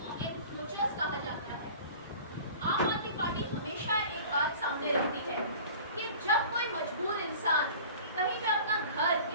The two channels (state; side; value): inverted; both; correlation -0.42